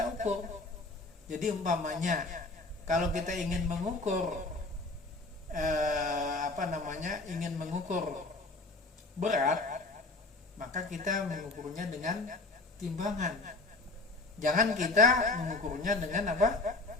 ukur. Jadi umpamanya kalau kita ingin mengukur ingin mengukur berat, maka kita mengukurnya dengan timbangan. Jangan kita mengukurnya dengan apa?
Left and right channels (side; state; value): right; quieter; 3.2 dB